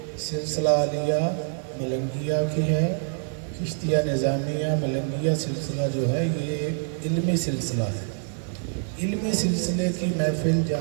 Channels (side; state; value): left; silent; digital silence